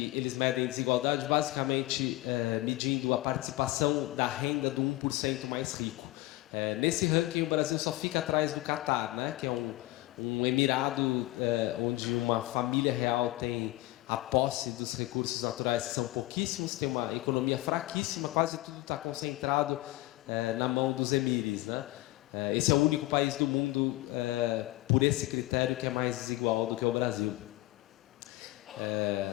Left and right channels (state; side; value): quieter; right; 18.8 dB